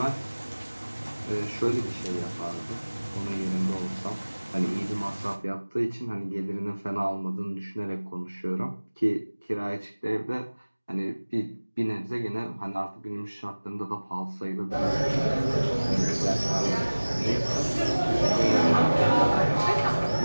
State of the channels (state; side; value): inverted; both; correlation -1.00